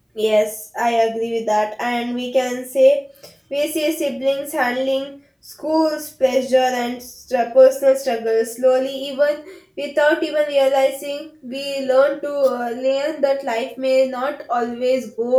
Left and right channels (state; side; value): identical; both; correlation 1.00